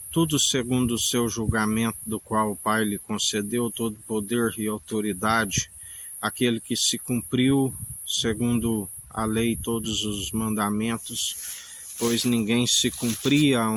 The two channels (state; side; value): identical; both; correlation 1.00